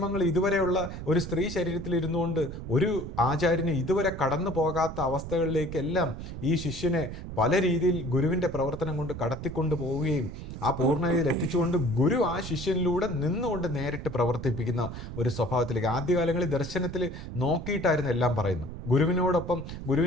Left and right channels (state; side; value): noise; right; rumble, 9 dB below the sound